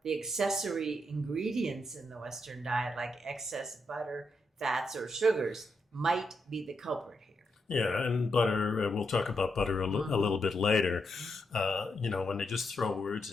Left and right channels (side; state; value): both; normal; correlation 0.82